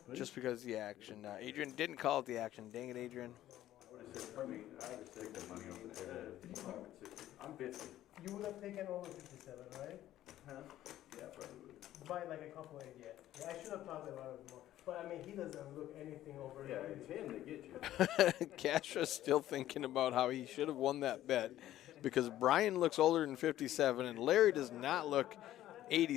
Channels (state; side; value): quieter; right; 13.4 dB